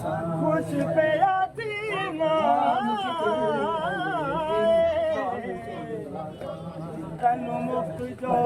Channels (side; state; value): both; identical; correlation 1.00